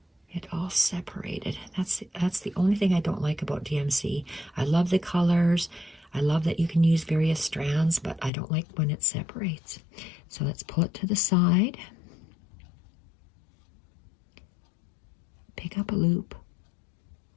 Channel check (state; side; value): drops out; right; at 8.3 s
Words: it all separated? That's the only thing I don't like about DMC. I love the colors. I love that you can use various strands, but I don't like when it separates. So let's pull it to the side. Pick up a loop,